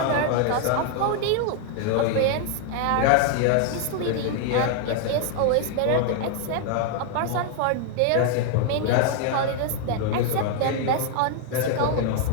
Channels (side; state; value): both; different; correlation 0.00